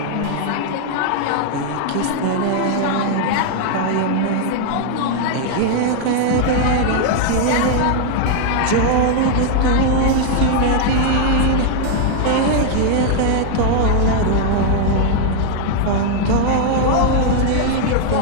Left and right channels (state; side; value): different; both; correlation 0.00